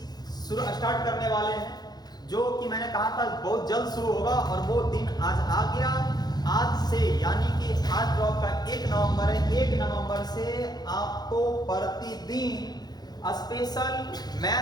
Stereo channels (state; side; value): late; right; 0.19 ms